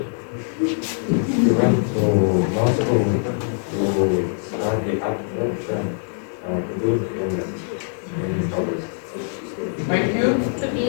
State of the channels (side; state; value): right; silent; 58 dB below the other